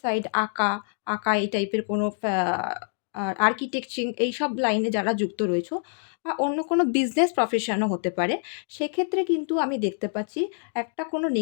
সাইড আঁকা এই টাইপের কোনো আর্কিটেকচিং এইসব লাইনে যারা যুক্ত রয়েছো বা অন্য কোনো বিজনেস প্রফেশনও হতে পারে। সেক্ষেত্রে কিন্তু আমি দেখতে পাচ্ছি একটা কোনো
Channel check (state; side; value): silent; right; 61 dB below the other